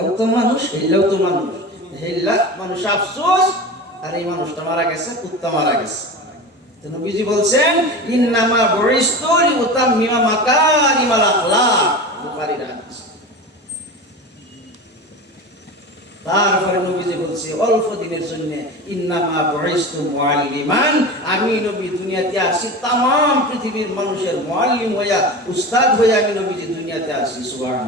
তো মানুষ, হেললেও তো মানুষ, হেললা মানুষ আফসোস, আর এই মানুষটা মারা গেছে, কুত্তা মারা গেছে। নবীজি বলছেন ইন্নামা বুইস্তু লিউতাম্মিমা মাকারিমাল আখলাক, বুখারীর হাদিস। তারপরে নবীজি বলছে অল্প দিনের জন্য ইন্নামা বুইস্তু মুআল্লিমান, আমি নবী দুনিয়াতে আসি तमाम পৃথিবীর মানুষের মুআল্লিম হইয়া, উস্তাদ হইয়া আমি নবীজি দুনিয়াতে আসি।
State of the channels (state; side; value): normal; both; correlation 0.30